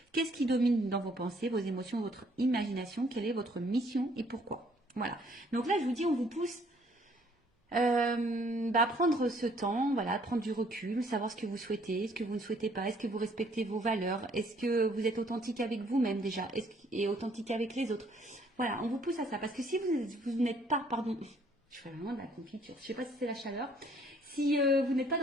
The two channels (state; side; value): normal; both; correlation 0.63